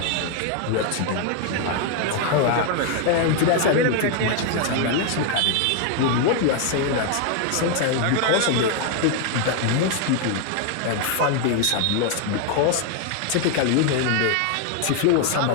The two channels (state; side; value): different; both; correlation 0.01